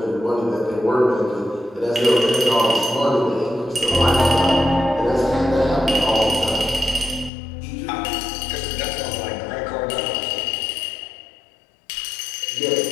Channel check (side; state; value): right; drops out; at 7.3 s